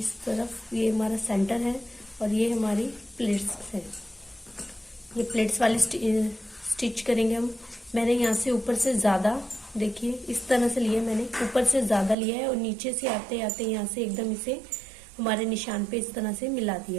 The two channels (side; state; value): left; drops out; at 12.2 s